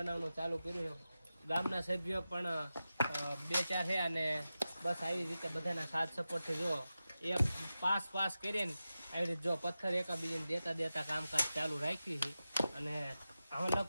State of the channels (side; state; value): both; inverted; correlation -0.93